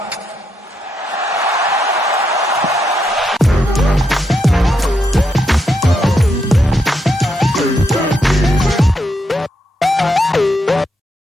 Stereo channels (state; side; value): normal; both; correlation 0.80